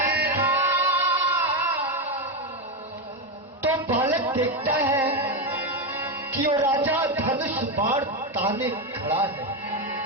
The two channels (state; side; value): normal; both; correlation 0.09